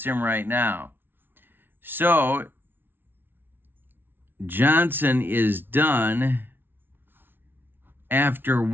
him right now. So, Johnson is done after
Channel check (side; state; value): left; late; 0.10 ms